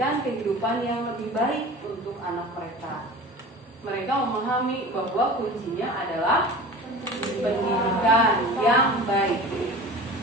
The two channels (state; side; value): normal; both; correlation 0.37